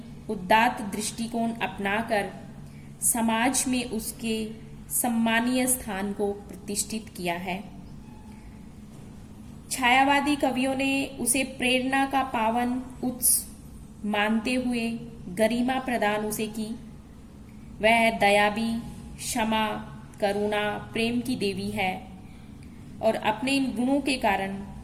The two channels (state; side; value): identical; both; correlation 1.00